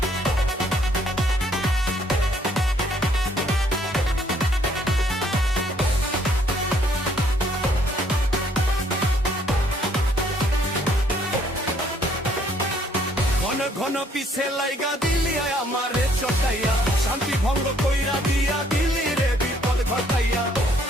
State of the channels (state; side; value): normal; both; correlation 0.65